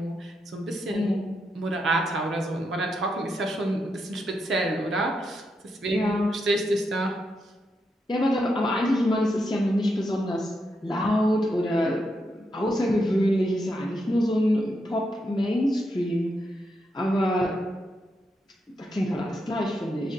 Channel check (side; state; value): both; normal; correlation 0.83